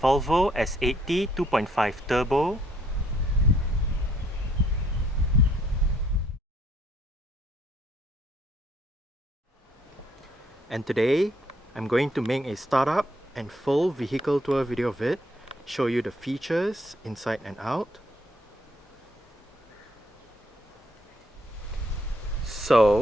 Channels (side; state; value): both; normal; correlation 0.68